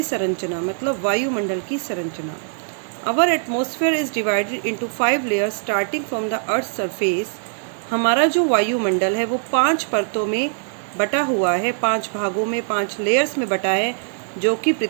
संरचना मतलब वायुमंडल की संरचना. Our atmosphere is divided into 5 layers starting from the earth's surface. हमारा जो वायुमंडल है वो 5 परतों में बटा हुआ है, 5 भागों में, 5 लेयर्स में बटा है, जो कि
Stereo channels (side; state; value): left; silent; digital silence